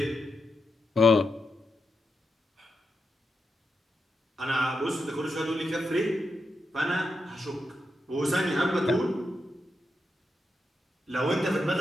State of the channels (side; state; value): both; normal; correlation 0.86